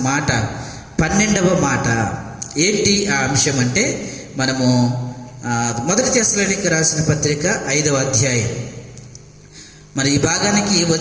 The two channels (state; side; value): identical; both; correlation 1.00